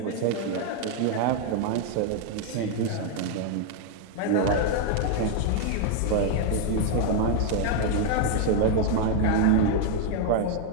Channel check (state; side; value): different; both; correlation 0.00